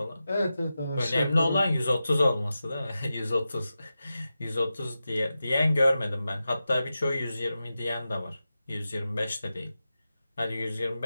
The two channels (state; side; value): inverted; both; correlation -0.92